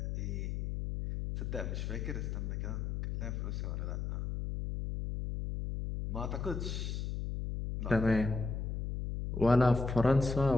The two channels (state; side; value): noise; left; hum, 3 dB below the sound